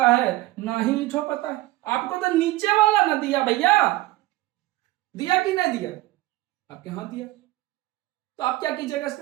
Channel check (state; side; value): quieter; left; 18.0 dB